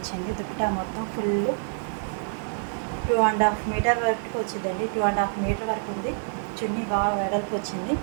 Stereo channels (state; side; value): silent; left; 60 dB below the other